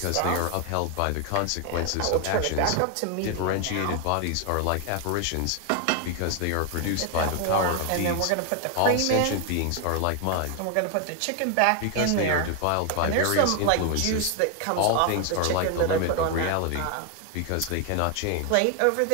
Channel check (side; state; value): both; different; correlation 0.00